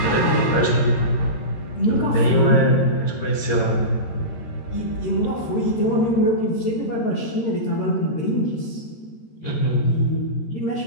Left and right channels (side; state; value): right; late; 13 ms